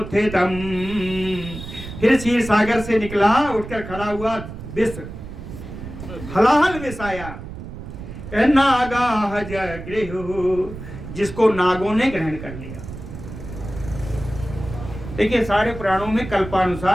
फिर क्षीर सागर से निकला, उठकर खड़ा हुआ विष, हलाहल विष आया। नागा जगृहो, जिसको नागों ने ग्रहण कर लिया। देखिए सारे पुराणों में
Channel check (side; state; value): right; noise; rumble, 11 dB below the sound